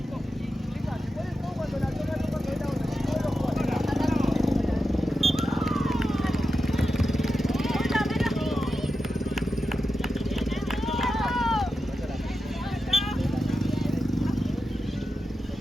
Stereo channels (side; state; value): both; normal; correlation 0.90